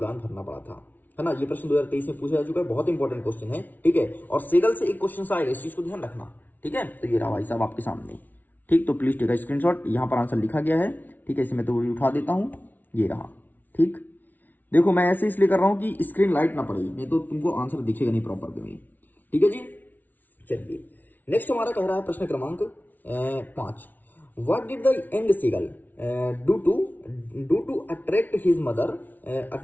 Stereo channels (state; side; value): late; right; 0.082 ms